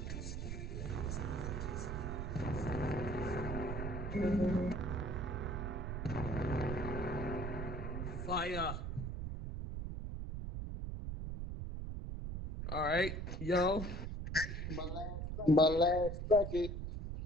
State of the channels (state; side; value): noise; right; rumble, 4 dB below the sound